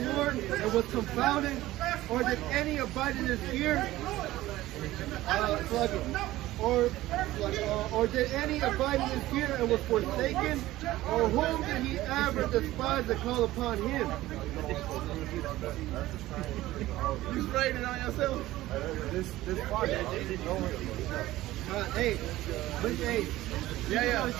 and was confounded, or did any abide in his fear? Or did any abide in his fear and was forsaken? Or whom did he ever despise and call upon him? You sprayed it on yourself? This fire. Hey, but hey, you gotta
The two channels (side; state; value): left; quieter; 16.3 dB